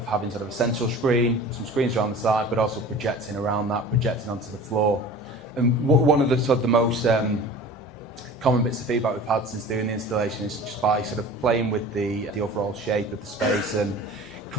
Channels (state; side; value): normal; both; correlation 0.40